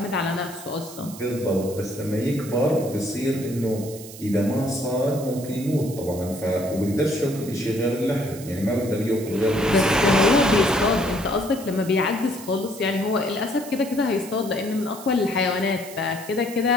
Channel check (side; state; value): right; noise; hiss, 15 dB below the sound